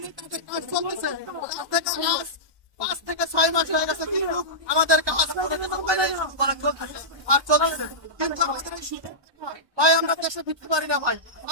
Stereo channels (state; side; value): late; left; 1.2 ms